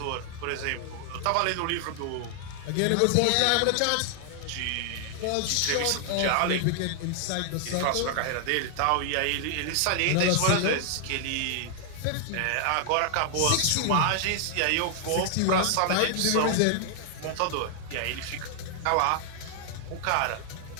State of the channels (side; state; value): both; different; correlation 0.00